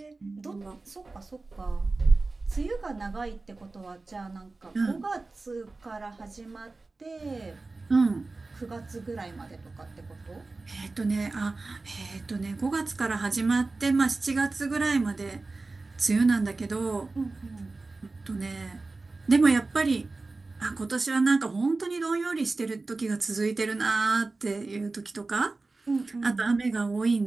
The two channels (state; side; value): quieter; left; 3.5 dB